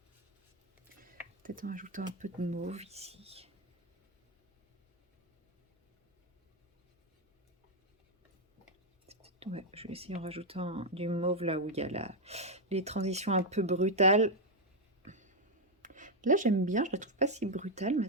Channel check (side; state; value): both; normal; correlation 0.01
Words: Peut-être en rajoutant un peu de mauve ici. Ouais, je vais essayer en rajoutant du mauve là où il y a les transitions un peu brutales. Là, j'aime bien, je la trouve pas si brutale, ma